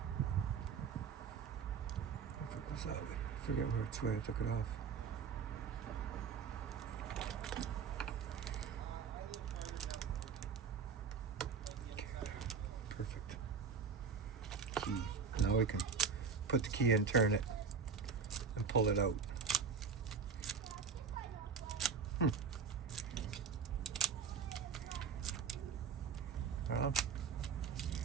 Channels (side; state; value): left; quieter; 5.8 dB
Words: If it goes that way, I forget which way I took it off. Perfect. Key. Now we can put the key in, turn it, and pull it out. Well,